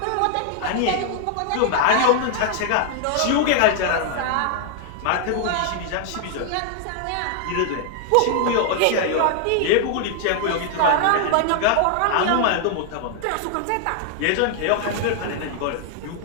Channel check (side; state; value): both; different; correlation 0.00